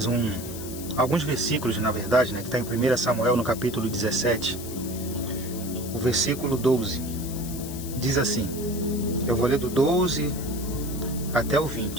alguns versículos, na verdade, que está em 1 Samuel, no capítulo 17. O versículo 12 diz assim. Eu vou ler do 12 até o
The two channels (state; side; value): noise; left; hiss, 12 dB below the sound